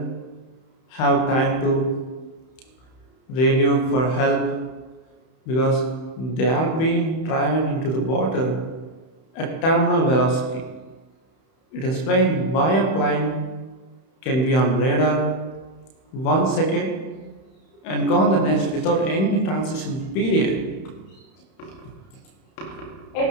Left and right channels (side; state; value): right; late; 31 ms